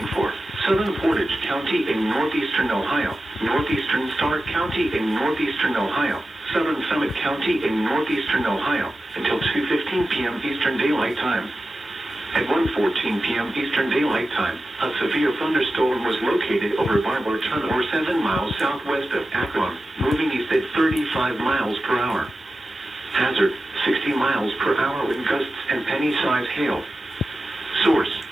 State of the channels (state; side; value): normal; both; correlation 0.93